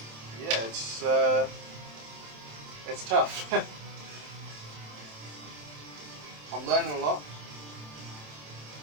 yeah, it's tough. I'm learning a lot.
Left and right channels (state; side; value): late; left; 27 ms